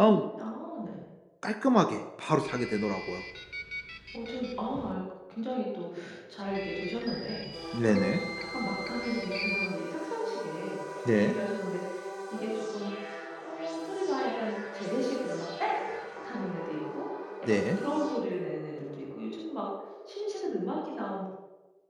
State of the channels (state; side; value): identical; both; correlation 1.00